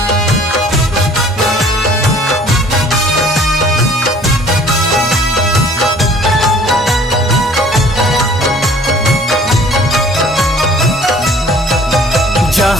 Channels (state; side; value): normal; both; correlation 0.53